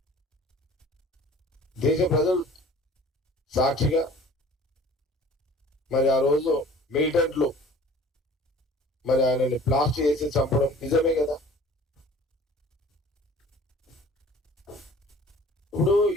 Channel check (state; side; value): normal; both; correlation 0.48